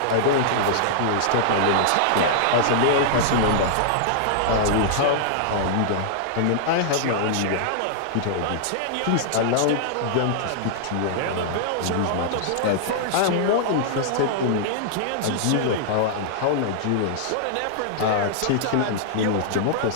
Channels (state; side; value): different; both; correlation -0.01